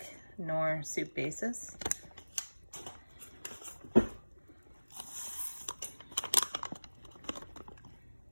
Knorr soup bases.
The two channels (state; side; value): inverted; both; correlation -1.00